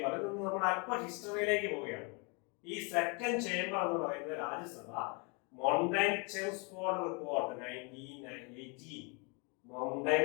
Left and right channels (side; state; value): right; quieter; 32.8 dB